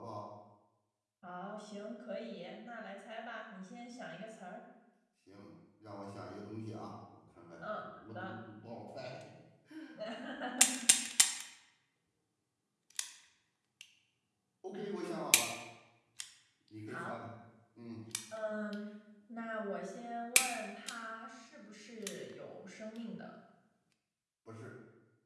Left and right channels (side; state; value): both; identical; correlation 1.00